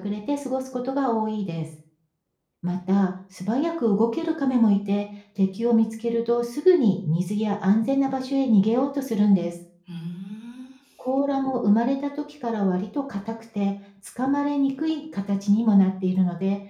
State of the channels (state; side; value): identical; both; correlation 1.00